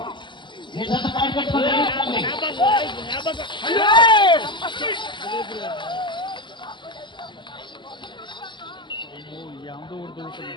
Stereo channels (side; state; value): right; late; 0.23 ms